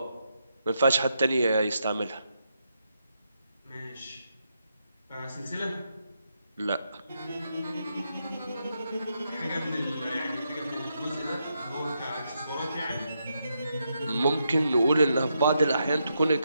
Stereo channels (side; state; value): both; inverted; correlation -0.82